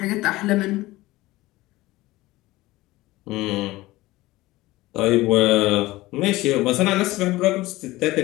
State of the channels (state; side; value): quieter; right; 18.7 dB